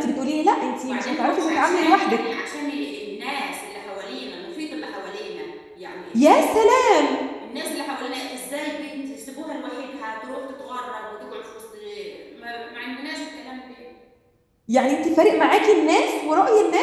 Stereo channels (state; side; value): identical; both; correlation 1.00